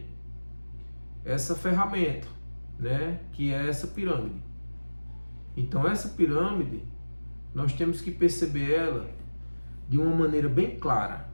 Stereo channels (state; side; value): inverted; both; correlation -1.00